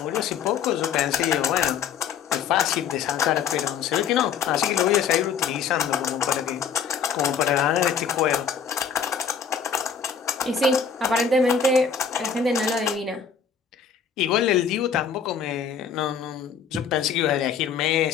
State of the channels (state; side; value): quieter; right; 6.8 dB